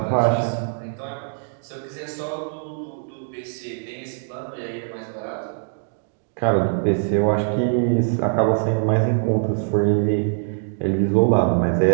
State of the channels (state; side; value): silent; left; digital silence